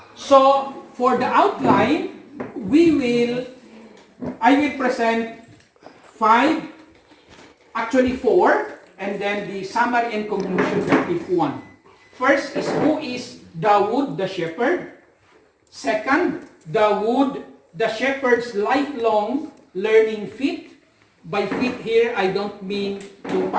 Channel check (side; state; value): both; identical; correlation 1.00